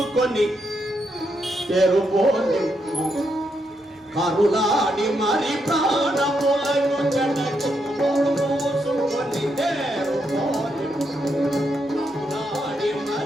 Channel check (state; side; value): normal; both; correlation 0.80